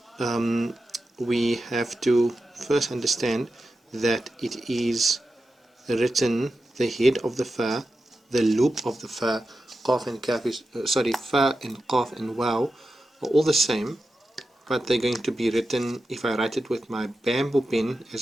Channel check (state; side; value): normal; both; correlation 0.90